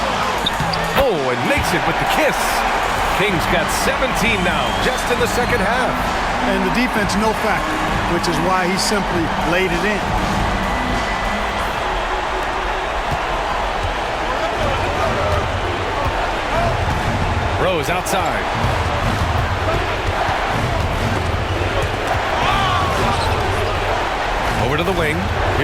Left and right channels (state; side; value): identical; both; correlation 1.00